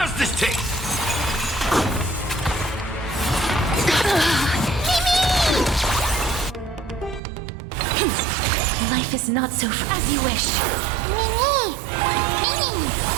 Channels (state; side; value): drops out; left; at 7.2 s